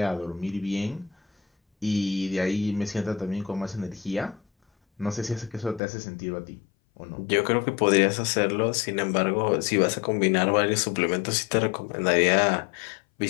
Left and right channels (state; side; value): drops out; right; at 5.8 s